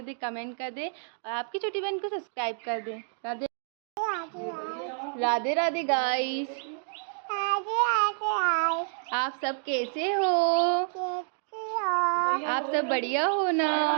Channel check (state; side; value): silent; left; digital silence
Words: दे, कमेंट कर दे और आपकी छोटी बहन को सब्सक्राइब कर दे। राधे राधे राधे गाइस। आप सब कैसे हो? आप सब बढ़िया हो ना?